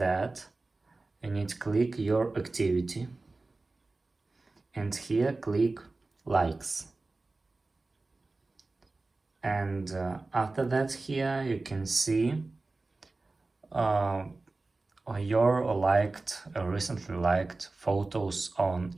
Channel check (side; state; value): left; quieter; 3.4 dB